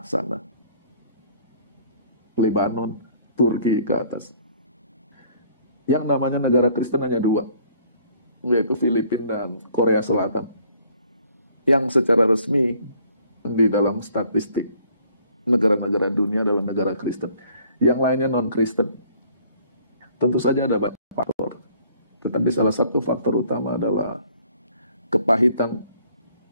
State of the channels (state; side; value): inverted; both; correlation -0.59